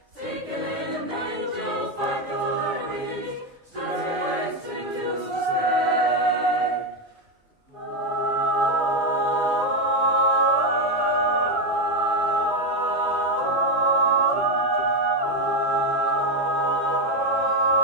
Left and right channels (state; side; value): normal; both; correlation 0.08